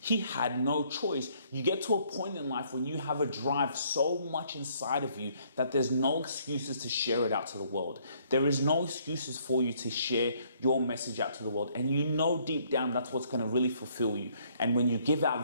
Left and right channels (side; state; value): both; inverted; correlation -0.66